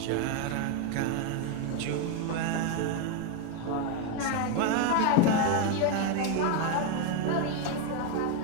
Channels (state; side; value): different; both; correlation 0.02